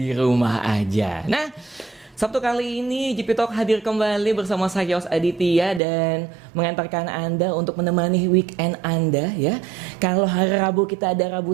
rumah aja. Nah, Sabtu kali ini GP Talk hadir kembali bersama saya Yos Aditya dan mengantarkan Anda untuk menemani weekend Anda ya. Kalau hari Rabu kita ada Rabu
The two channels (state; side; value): drops out; left; at 5.8 s